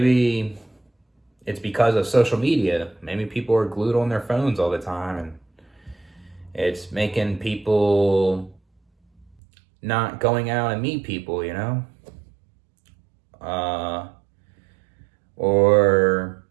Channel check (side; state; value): left; drops out; at 9.3 s